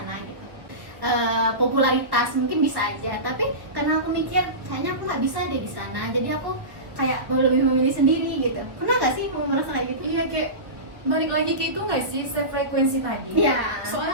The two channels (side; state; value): left; late; 1.4 ms